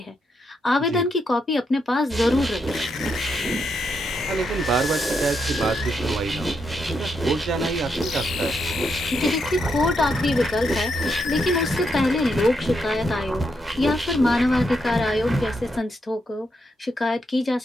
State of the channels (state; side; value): normal; both; correlation 0.80